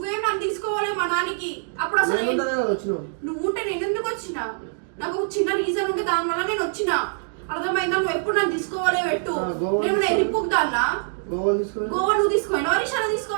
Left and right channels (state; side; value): silent; left; digital silence